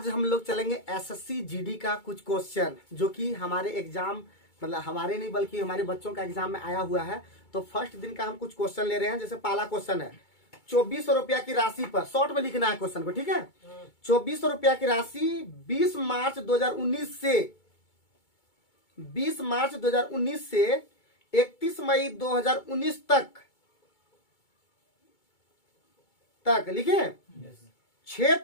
हम लोग चलेंगे एसएससी जीडी का कुछ क्वेश्चन जो कि हमारे एग्जाम मतलब हमारे नहीं बल्कि हमारे बच्चों का एग्जाम में आया हुआ है। तो फर्स्ट दिन का हम कुछ क्वेश्चन ले रहे हैं। जैसे पहला क्वेश्चन है 2400 रुपया की राशि पर, शॉर्ट में लिखना है क्वेश्चन को, ठीक है। 2400 रुपया की राशि 20 मार्च 2019 से 31 मई 2019 तक लिखे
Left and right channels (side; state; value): right; late; 2.2 ms